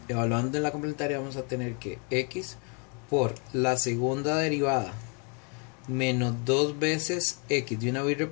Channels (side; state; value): right; quieter; 35.8 dB